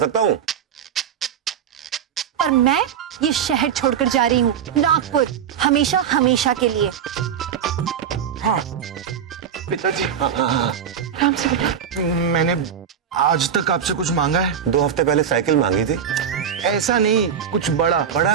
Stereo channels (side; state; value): left; quieter; 8.2 dB